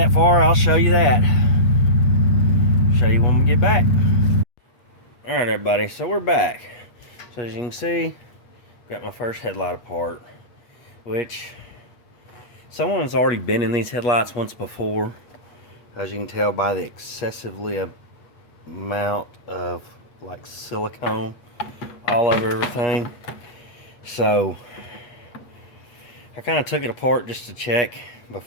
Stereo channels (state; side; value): late; right; 8.4 ms